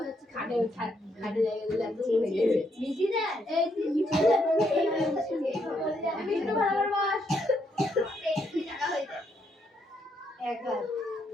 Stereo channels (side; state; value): both; normal; correlation 0.75